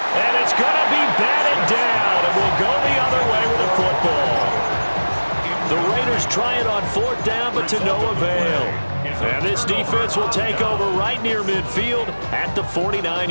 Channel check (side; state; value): both; inverted; correlation -1.00